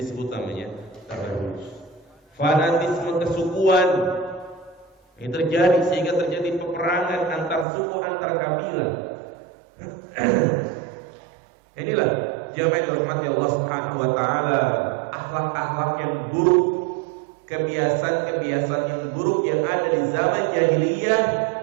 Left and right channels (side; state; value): left; drops out; at 7.7 s